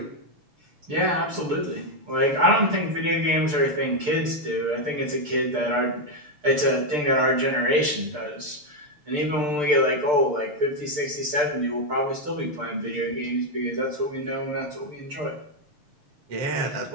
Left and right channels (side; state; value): left; late; 6.7 ms